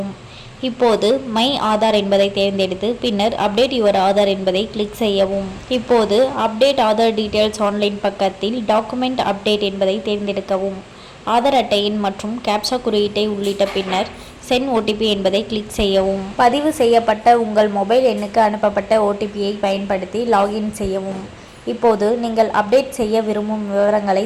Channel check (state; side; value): identical; both; correlation 1.00